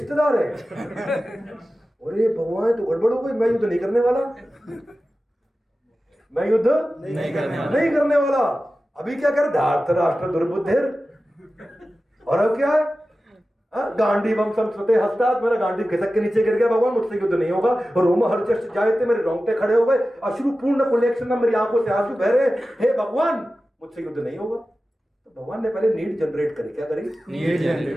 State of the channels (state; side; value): normal; both; correlation 0.94